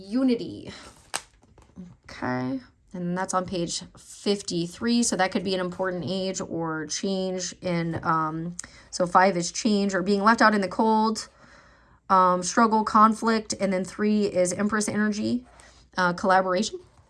Okay. And that's on page 53. So that could be an important age or change in, so 5 is change or being left out in the cold, struggle, conflict. And then 3 is Empress energy, collaboration.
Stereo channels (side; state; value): both; identical; correlation 1.00